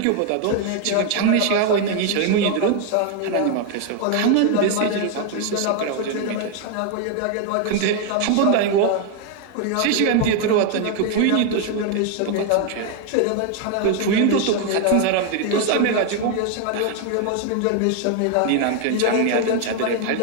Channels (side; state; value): both; different; correlation 0.01